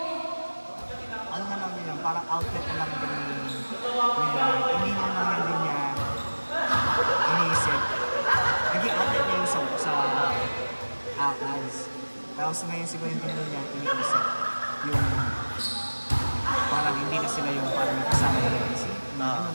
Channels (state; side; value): inverted; both; correlation -1.00